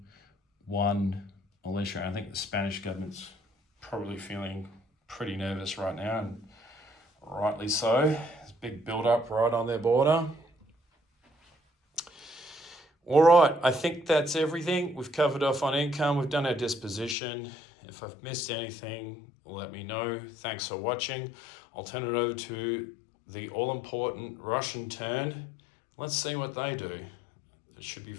1 militia. I think the Spanish government's probably feeling pretty nervous right now, and rightly so. There's a big build-up right on their border. All right, I think that's everything. We've covered off on income. We've done our disposition. If I've missed anything, let me know. Thanks for watching. I'll turn it over to the all-important Russian turn. Let's see what they do. It should be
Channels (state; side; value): drops out; right; at 17.2 s